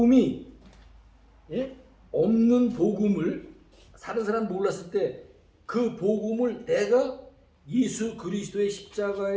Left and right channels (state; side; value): identical; both; correlation 1.00